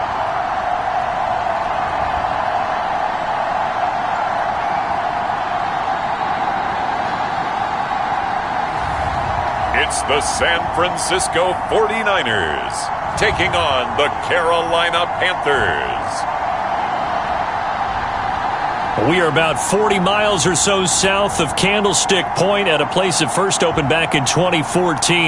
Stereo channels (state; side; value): identical; both; correlation 1.00